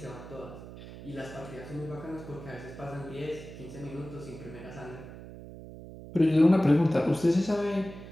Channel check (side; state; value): right; noise; hum, 14 dB below the sound